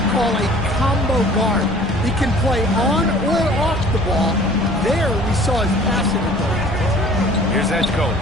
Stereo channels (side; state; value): both; normal; correlation 0.50